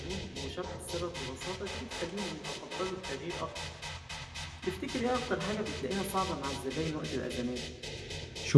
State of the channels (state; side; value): identical; both; correlation 1.00